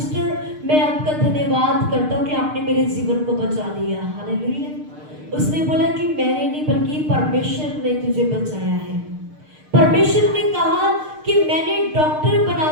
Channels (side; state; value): left; late; 6.6 ms